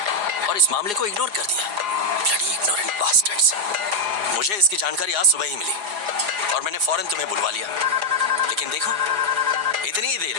और इस मामले को इग्नोर कर दिया। Bloody ignorant bastards. मुझे इसकी जानकारी आज सुबह ही मिली और मैंने फौरन तुम्हें बुलवा लिया। लेकिन देखो, इतनी ही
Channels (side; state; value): left; late; 4.8 ms